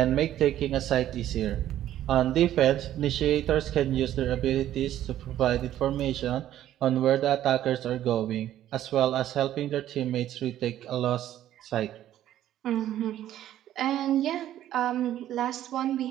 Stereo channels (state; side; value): quieter; left; 12.3 dB